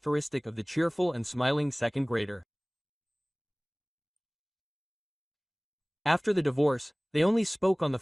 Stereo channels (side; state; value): both; identical; correlation 1.00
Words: of the cheerful and smiling second grader. After the divorce, they only spoke on the